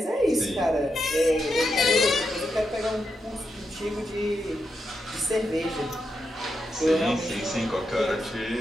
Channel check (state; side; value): normal; both; correlation 0.84